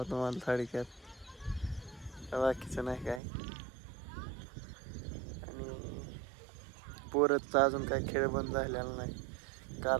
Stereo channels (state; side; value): drops out; left; at 3.2 s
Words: तुम्हाला थोडक्यात, बाकीचं नाही काय. आणि पोरतचा अजून काय खेळ बंद झालेला नाही,